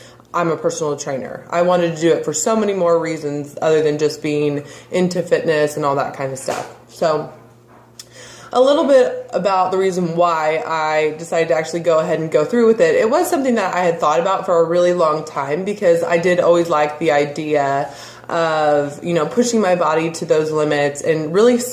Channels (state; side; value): identical; both; correlation 1.00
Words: I'm a personal trainer. I wanted to do it for so many more reasons other than just being into fitness and all that kind of stuff. So a little bit about the reason why I decided to actually go ahead and go through with it. It was something that I had thought about for a really long time because I did always like the idea of, pushing my body to those limits and really